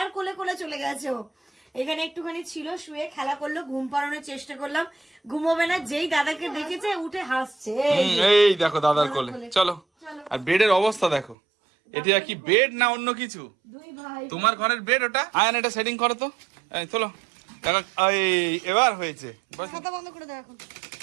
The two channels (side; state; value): left; drops out; at 11.4 s